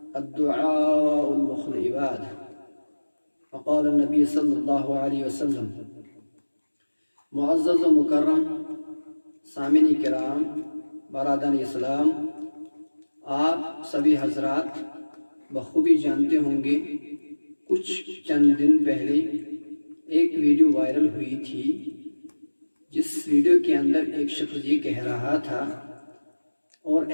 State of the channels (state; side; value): inverted; both; correlation -1.00